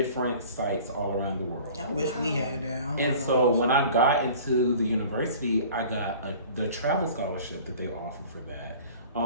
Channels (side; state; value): both; inverted; correlation -0.45